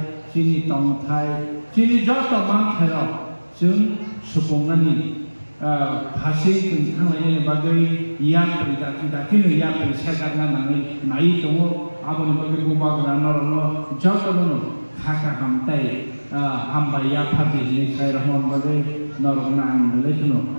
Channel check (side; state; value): both; inverted; correlation -1.00